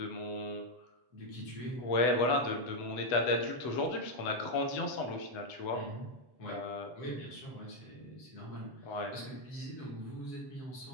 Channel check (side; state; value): right; late; 8.1 ms